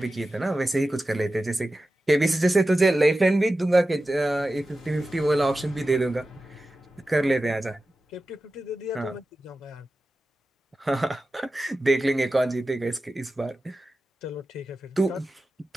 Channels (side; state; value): both; normal; correlation 0.93